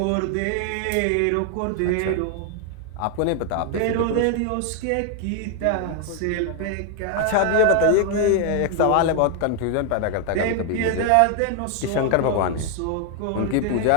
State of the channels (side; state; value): both; different; correlation 0.00